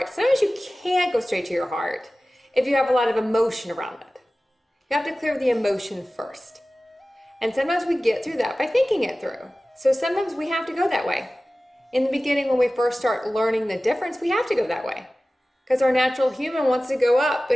Sometimes you can't go straight to your heart if you have a lot of emotion around it. You have to clear the emotion first. And sometimes we get through that by thinking it through. So sometimes we have to go that way. In the beginning, when we first start learning the difference, we have to go that way because our natural human wants to go up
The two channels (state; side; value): normal; both; correlation 0.97